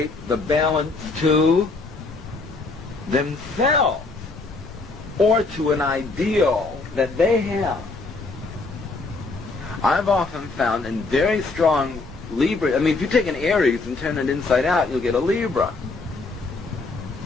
the balance to themselves or to an ideal that they have. I've often found in very strong Libra. I mean, if you take an Aries and turn it inside out, you'll get a Libra.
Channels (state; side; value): quieter; right; 3.6 dB